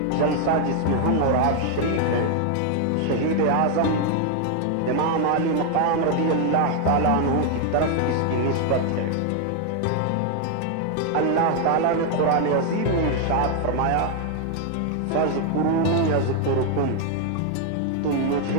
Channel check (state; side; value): different; both; correlation 0.00